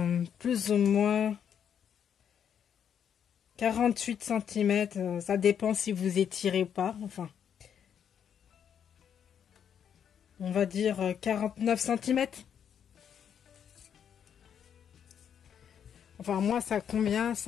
plus ou moins 48 cm, ça dépend si vous étirez ou pas, enfin on va dire 49 cm. Enfin moi ça convient,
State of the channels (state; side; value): quieter; right; 8.3 dB